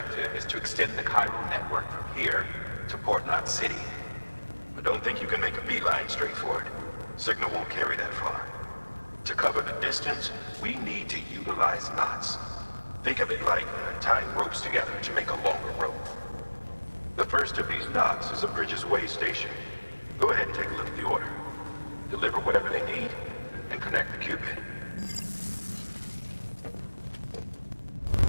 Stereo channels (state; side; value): inverted; both; correlation -1.00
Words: is to extend the Cairo network from here to Port-2 City. But don't think you can make a beeline straight for it. Signal won't carry that far. To cover the distance, we need to utilize knots. Think of it like tying ropes together to make a longer rope. The first of these knots is a Bridges Way station. Go ahead and take a look at the order. Deliver whatever they need, and connect the Cupid.